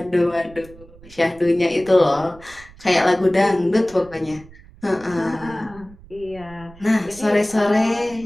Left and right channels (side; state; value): right; noise; rumble, 22 dB below the sound